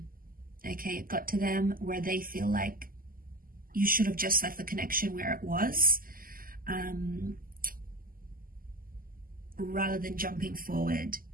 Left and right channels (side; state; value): left; late; 0.42 ms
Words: Okay, it got to them where they feel like you should have just left the connection where it was, rather than jumping forward.